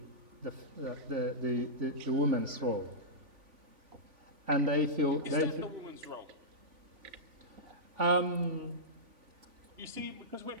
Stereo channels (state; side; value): late; left; 3.5 ms